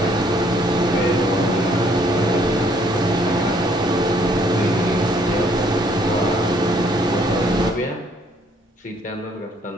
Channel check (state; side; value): normal; both; correlation 0.65